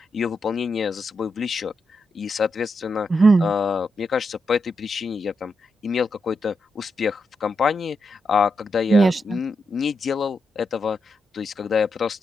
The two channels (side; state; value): both; normal; correlation 0.84